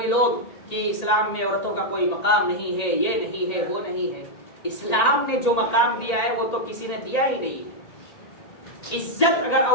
لوگ، کہ اسلام میں عورتوں کا کوئی مقام نہیں ہے، یہ نہیں ہے، وہ نہیں ہے. اسلام نے جو مقام دیا ہے وہ تو کسی نے دیا ہی نہیں. عزت اگر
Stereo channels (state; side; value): late; right; 1.8 ms